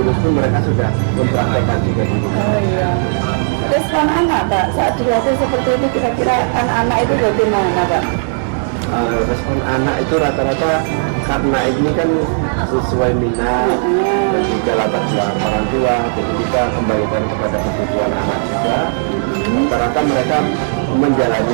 pun mereka sudah mempraktekkan juga di rumah. Respon anak Pak saat dilatih seperti itu, kira-kira anak-anak itu bagaimana Pak? Respon anak itu rata-rata karena ini kan sesuai minat dan juga latar belakang orang tua, jadi kita kembalikan kepada kebutuhan anak juga. Rata-rata mereka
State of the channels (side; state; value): left; silent; digital silence